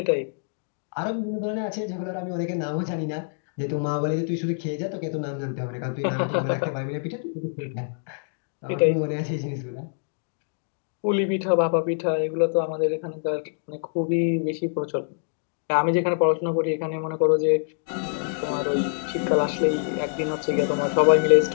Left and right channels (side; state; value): right; silent; digital silence